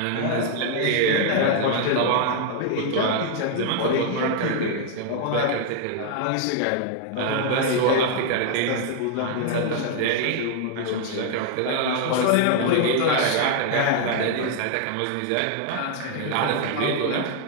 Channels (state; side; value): different; both; correlation 0.00